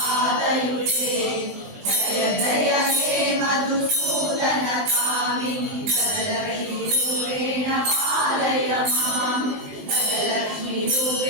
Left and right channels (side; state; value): left; late; 20 ms